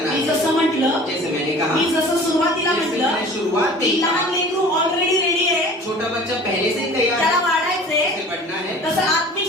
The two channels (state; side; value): normal; both; correlation 0.44